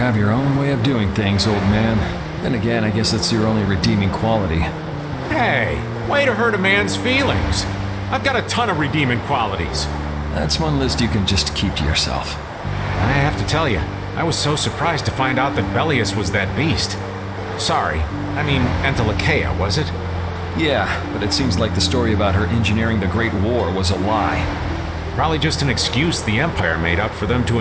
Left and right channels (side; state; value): both; identical; correlation 1.00